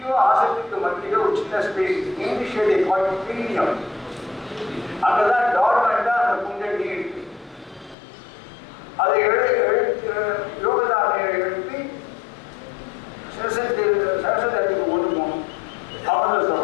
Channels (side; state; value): right; drops out; at 8.0 s